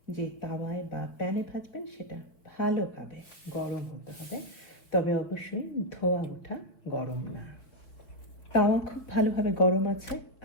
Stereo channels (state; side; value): late; right; 4.3 ms